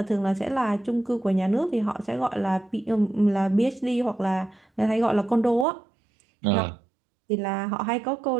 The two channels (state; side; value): drops out; left; at 5.7 s